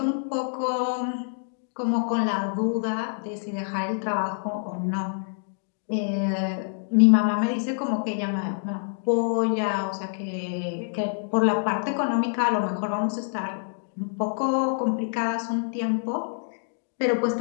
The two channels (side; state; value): right; silent; digital silence